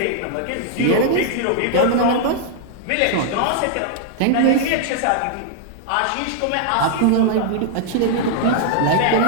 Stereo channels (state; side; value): different; both; correlation 0.00